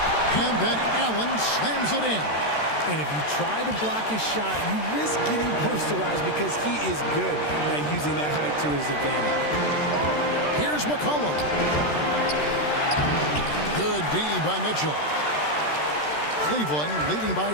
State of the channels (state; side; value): late; right; 13 ms